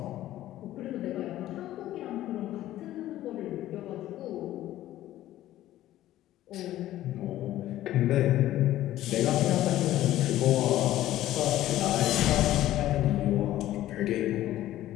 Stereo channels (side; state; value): right; quieter; 14.1 dB